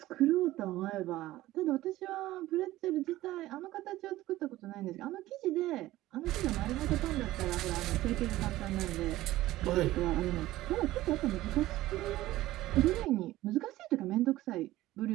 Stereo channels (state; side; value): quieter; left; 16.2 dB